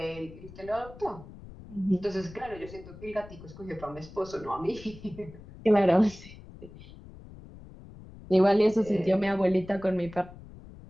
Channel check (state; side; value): noise; left; rumble, 17 dB below the sound